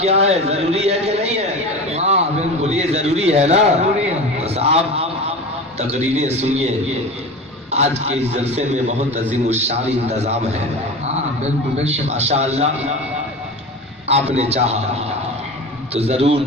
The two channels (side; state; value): both; normal; correlation 0.30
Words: ہے، ضروری ہے کہ نہیں ہے؟ بولیے ضروری ہے نا؟ بس آپ تقریریں سنیے، آج کے اس جلسے میں بہت عظیم الشان انتظام ہے۔ ماشاءاللہ آپ نے چاہا تو ضرور